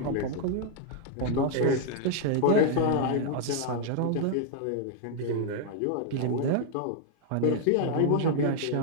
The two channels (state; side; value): different; both; correlation 0.00